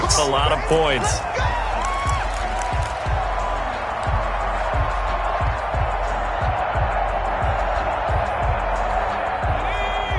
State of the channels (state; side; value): identical; both; correlation 1.00